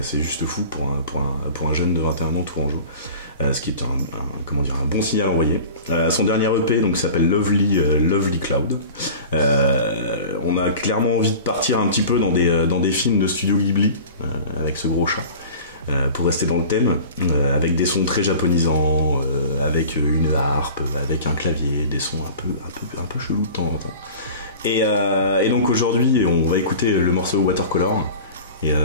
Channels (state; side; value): inverted; both; correlation -0.39